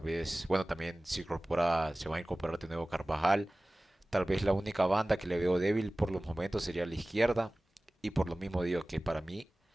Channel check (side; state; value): both; normal; correlation 0.98